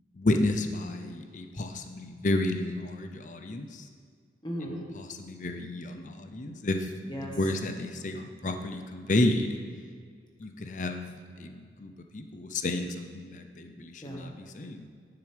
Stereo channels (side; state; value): both; normal; correlation 0.73